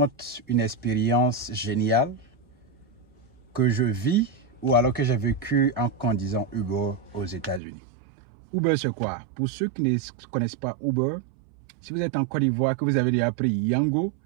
une expérience géniale que je vis ou alors que j'ai vécu en conduisant Uber aux États-Unis. Uber, c'est quoi? Pour ceux qui ne connaissent pas Uber, si vous êtes en Côte d'Ivoire, que vous avez déjà appris Yango,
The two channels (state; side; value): drops out; left; at 7.6 s